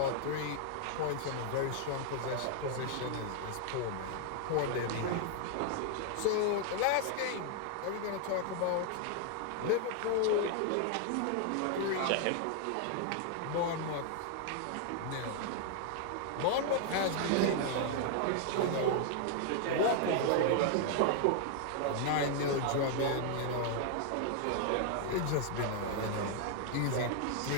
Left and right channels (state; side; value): different; both; correlation 0.00